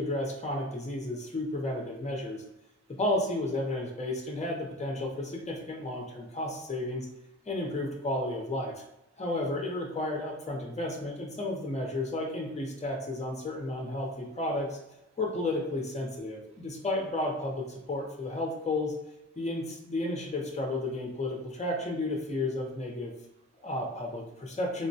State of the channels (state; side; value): normal; both; correlation 0.37